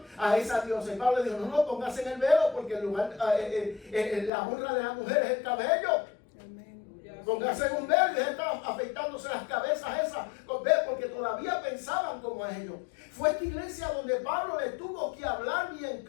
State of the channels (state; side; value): drops out; right; at 4.3 s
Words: a esa diosa. Y Pablo dijo, no, póngase en el velo, porque el lugar, la honra de la mujer es el cabello. Póngase en un velo y dejen estar afeitándose las cabezas esas, porque todavía pensaban como a ellos. Fue esta iglesia donde Pablo le tuvo que hablar bien